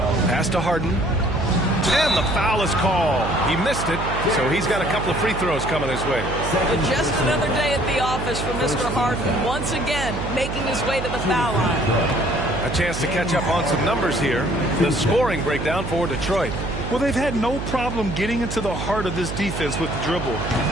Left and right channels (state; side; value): noise; right; hum, 6 dB below the sound